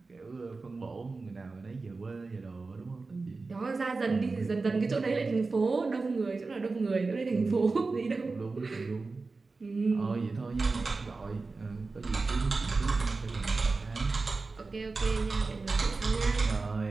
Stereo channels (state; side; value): quieter; left; 3.9 dB